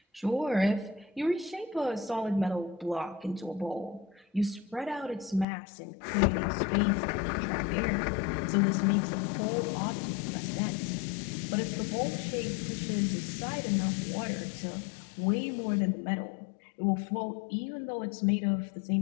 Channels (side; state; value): right; drops out; at 5.5 s